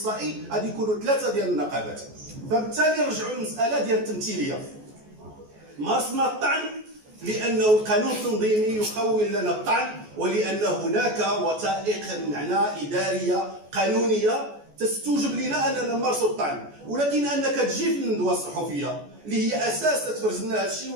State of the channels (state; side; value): late; left; 14 ms